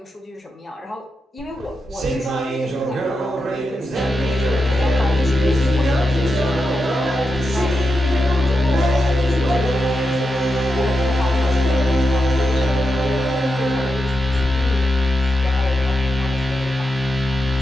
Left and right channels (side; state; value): both; normal; correlation 0.88